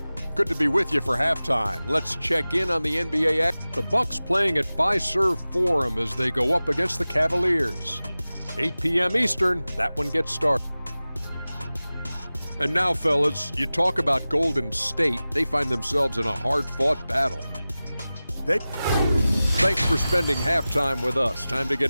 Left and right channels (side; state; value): both; inverted; correlation -0.97